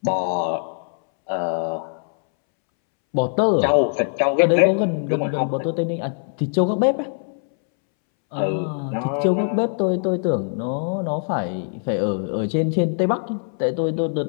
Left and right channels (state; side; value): silent; right; 64 dB below the other